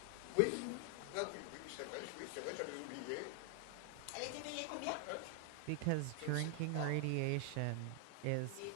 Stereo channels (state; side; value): different; both; correlation 0.00